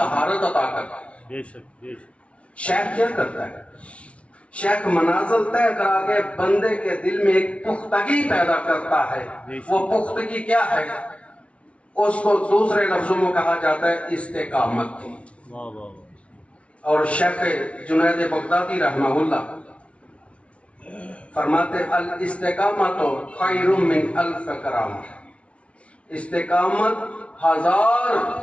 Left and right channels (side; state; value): right; late; 0.062 ms